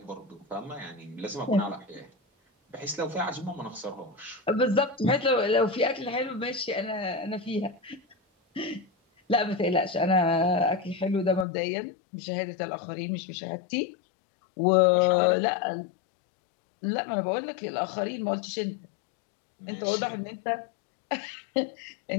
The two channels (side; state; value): right; drops out; at 11.5 s